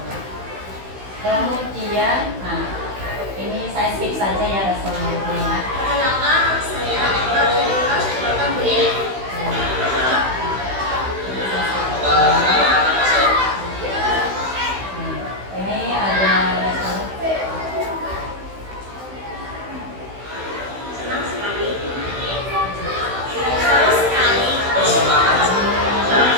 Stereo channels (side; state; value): left; late; 16 ms